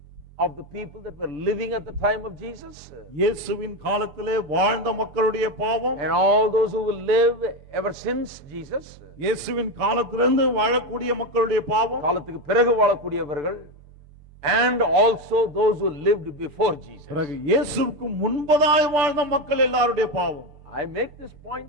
of the people that were living at the time of Jesus, இயேசுவின் காலத்திலே வாழ்ந்த மக்களுடைய பாவம், and all those who will live ever since Jesus, இயேசுவின் காலத்திலிருந்து வாழக்கூடிய மக்களுடைய பாவம், காலத்துக்கு பிறகு வாழக்கூடியவர்கள், and also those who lived before Jesus. பிறகு இயேசுவுக்கு முன்பதாய் வாழ்ந்த மக்கள் எல்லாருடைய பாவம். I make this point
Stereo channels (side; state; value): left; late; 6.9 ms